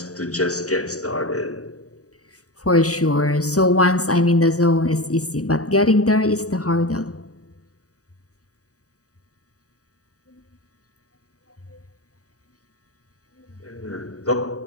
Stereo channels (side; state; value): right; late; 0.66 ms